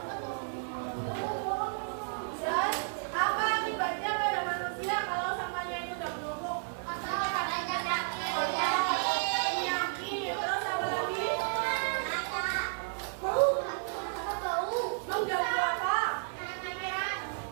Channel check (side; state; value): left; silent; digital silence